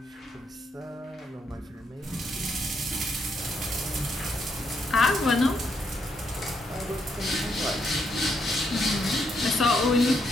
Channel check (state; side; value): normal; both; correlation 0.77